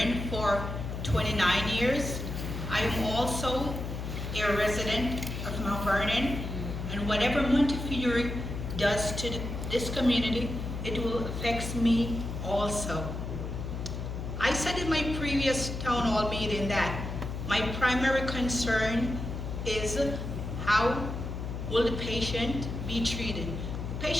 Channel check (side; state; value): left; noise; hum, 5 dB below the sound